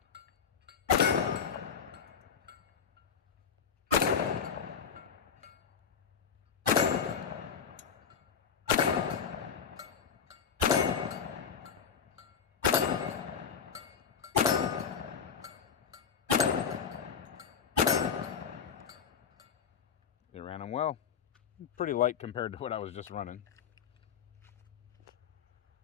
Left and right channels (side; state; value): right; quieter; 7.0 dB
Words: They ran them well. Pretty light compared to what I was just running.